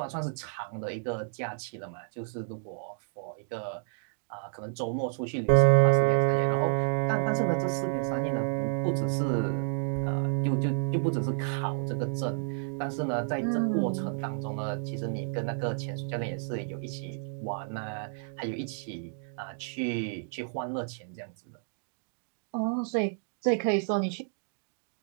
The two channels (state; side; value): silent; left; 57 dB below the other